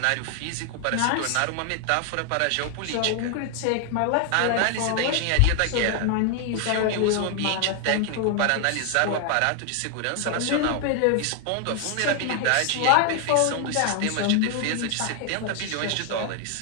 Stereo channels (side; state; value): both; different; correlation 0.00